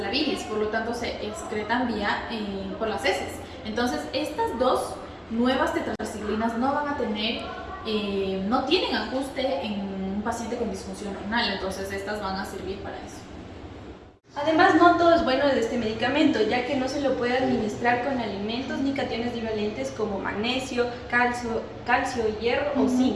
la bilis, por lo tanto se excretan por las heces. Entonces estas dos nuevas tetraciclinas no van a tener, no tienen ajuste en un paciente con disfunción renal, entonces estas van a servir para eso. Además, no todo es bueno de este medicamento, ya que no se lo puede administrar con alimentos ni cationes divalentes como magnesio, calcio, hierro o zinc,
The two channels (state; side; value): identical; both; correlation 1.00